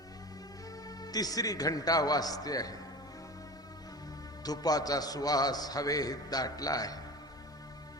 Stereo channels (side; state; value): both; normal; correlation 0.33